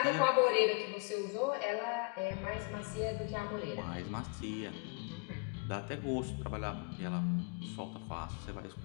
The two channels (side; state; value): right; quieter; 31.9 dB